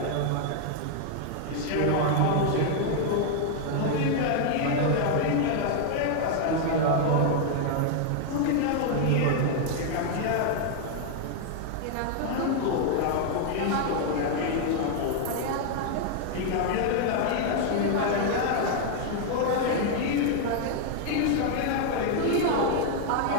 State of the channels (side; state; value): both; different; correlation 0.00